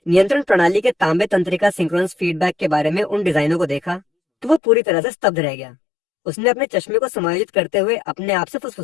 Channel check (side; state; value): right; drops out; at 4.6 s